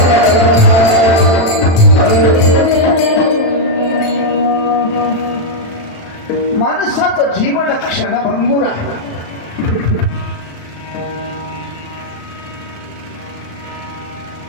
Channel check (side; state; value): right; late; 36 ms